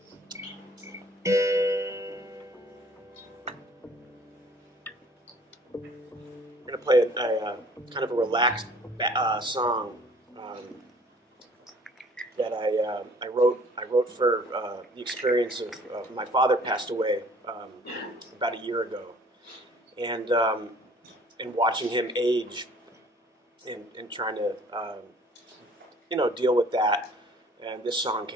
We're going to play a kind of a relaxed song that I wrote for the experience of my father passed away about a year ago, and watching him age and trying to deal with that. And this song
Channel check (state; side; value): normal; both; correlation 0.53